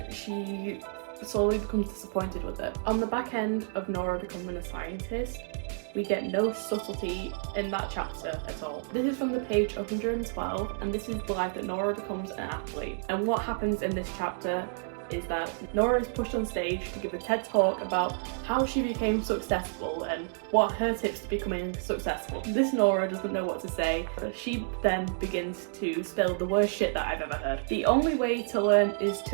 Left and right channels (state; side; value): silent; left; digital silence